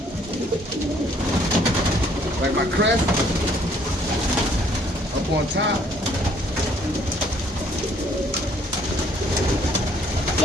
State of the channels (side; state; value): both; normal; correlation 0.62